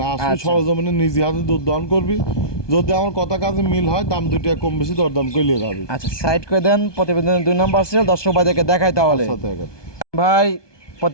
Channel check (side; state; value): right; late; 1.2 ms